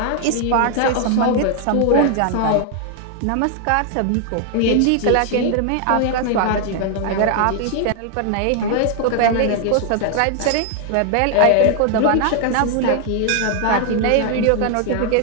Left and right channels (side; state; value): both; different; correlation 0.00